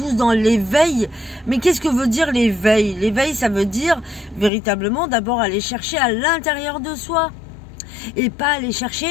dans l'éveil. Mais qu'est-ce que veut dire l'éveil? L'éveil, ça veut dire véritablement d'abord aller chercher à l'intérieur de soi et pas aller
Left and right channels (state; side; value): drops out; right; at 4.5 s